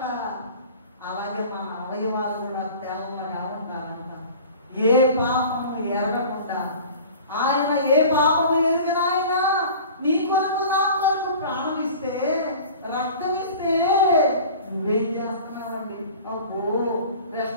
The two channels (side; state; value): both; inverted; correlation -0.41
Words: అలాగే మన అవయవాలు కూడా తెల్లగా ఉండాలంట. ఏ పాపము ఎరగకుండా. ఆయన ఏ పాపము ఎరిగిన ఆయన నీ కొరకు నా కొరకు ప్రాణం ఇస్తే, రక్తం ఇస్తే నువ్వేం చేస్తున్నావండి? అబ్బో,